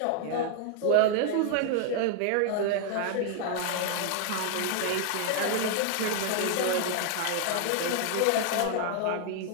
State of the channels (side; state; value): both; different; correlation 0.00